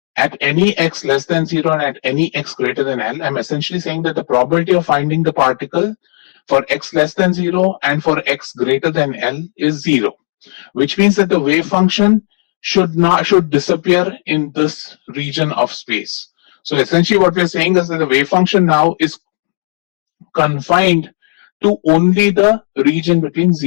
at any x less than 0 and at any x greater than L, I'm essentially saying that the probability of finding the particle for x less than 0 and for x greater than L is 0, which means that the wave function should disappear in this region of space. So essentially what we're saying is that the wave function now is confined to only the region between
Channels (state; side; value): silent; right; 70 dB below the other